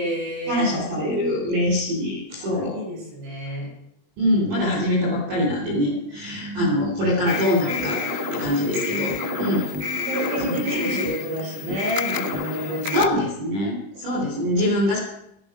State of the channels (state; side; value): late; left; 20 ms